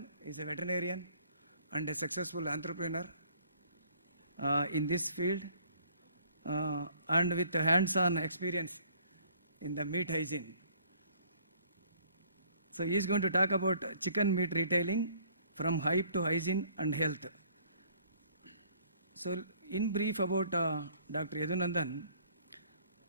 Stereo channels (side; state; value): both; inverted; correlation -0.59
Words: is a veterinarian and a successful entrepreneur in this field and with hands-on experience in the meat hygiene. So he is going to talk about chicken meat retailing from hype to hygiene and health. So in brief about Dr. Yadunandan.